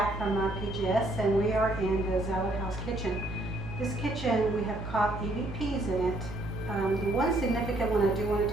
from PGS, and we are in the Zalud house kitchen. This kitchen, we have caught EVPs in it. The one significant one I do want to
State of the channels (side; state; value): right; noise; hum, 10 dB below the sound